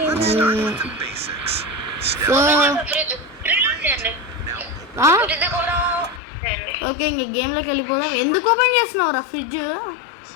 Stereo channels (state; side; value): drops out; right; at 6.2 s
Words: ఓకే, ఇంక గేమ్లోకి వెళ్ళిపోదాం. ఎందుకు ఓపెన్ చేస్తున్నావురా ఫ్రిడ్జ్?